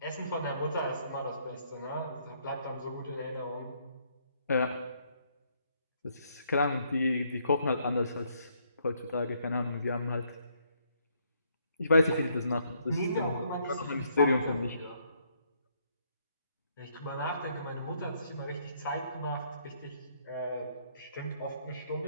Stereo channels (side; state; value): both; inverted; correlation -0.70